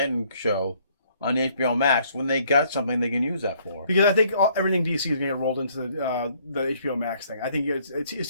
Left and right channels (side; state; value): both; inverted; correlation -0.64